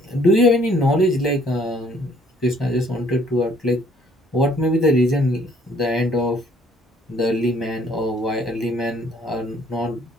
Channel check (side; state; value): both; normal; correlation 0.62